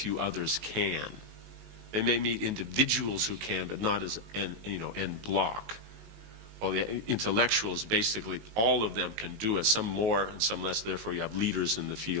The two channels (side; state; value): left; late; 19 ms